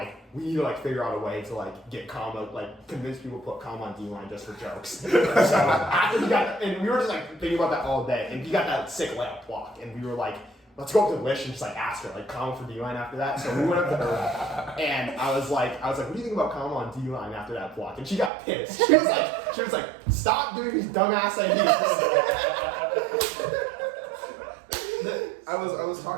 need to like figure out a way to like get Kama, like convince people to put Kama on D-line just for jokes. So after he got, and we were just like thinking about that all day, and he got that sick layup block, and we were like, let's go up to Lish and just like ask her like Kama for D-line after that. So we went up to her, and I was like, what do you think about Kama on D-line after that block? And she got pissed. She was like, stop doing these dumbass ideas. I was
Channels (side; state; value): left; drops out; at 18.3 s